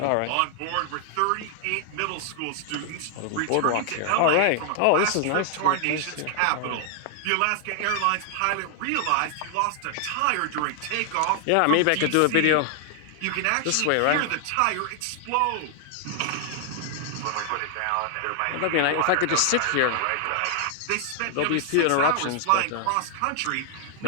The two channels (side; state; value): both; different; correlation 0.00